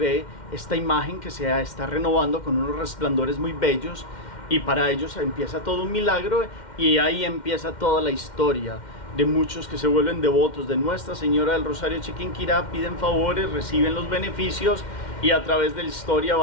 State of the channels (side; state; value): right; late; 2.1 ms